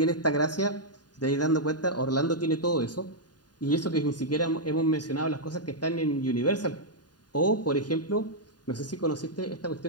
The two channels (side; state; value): right; late; 0.70 ms